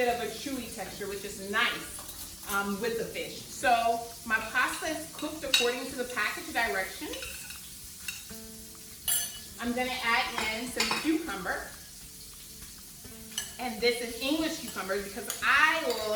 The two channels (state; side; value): identical; both; correlation 1.00